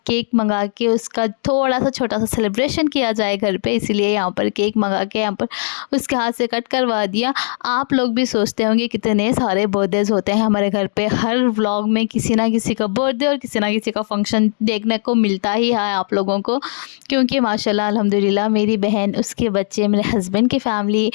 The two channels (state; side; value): silent; right; digital silence